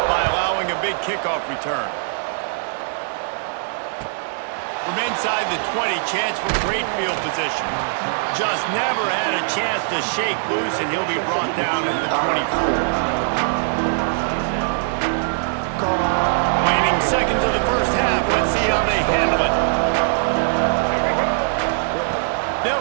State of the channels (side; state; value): left; silent; digital silence